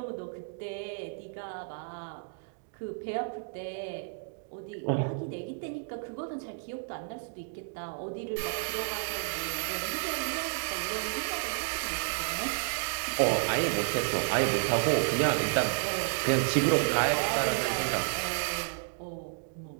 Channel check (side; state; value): left; silent; 57 dB below the other